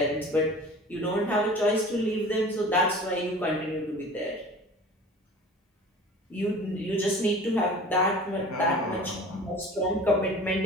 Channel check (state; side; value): normal; both; correlation 0.42